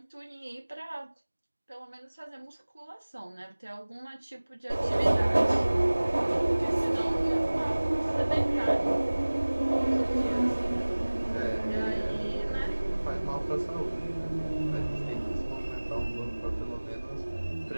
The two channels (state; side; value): inverted; both; correlation -1.00